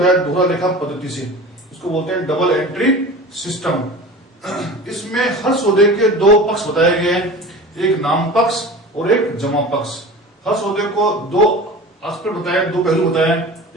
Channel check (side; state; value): both; normal; correlation 0.36